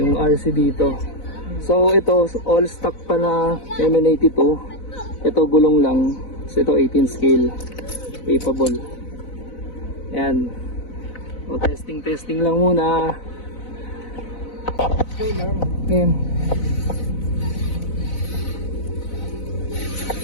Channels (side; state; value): right; late; 4.0 ms